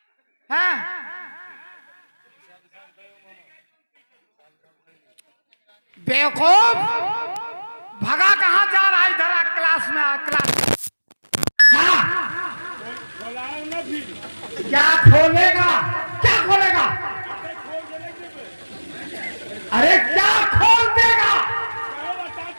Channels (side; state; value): both; inverted; correlation -1.00